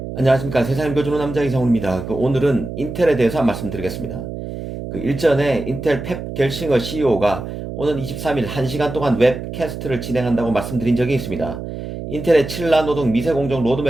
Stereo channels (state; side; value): noise; right; hum, 8 dB below the sound